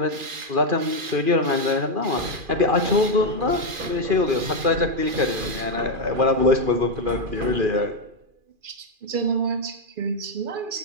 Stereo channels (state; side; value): late; left; 2.4 ms